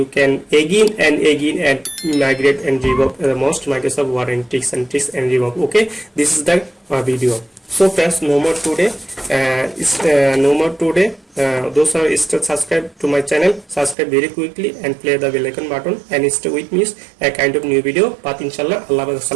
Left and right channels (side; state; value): left; drops out; at 14.0 s